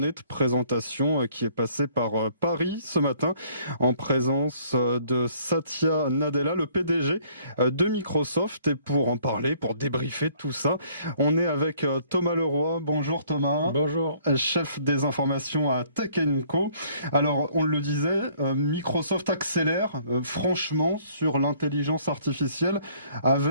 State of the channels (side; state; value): both; inverted; correlation -0.61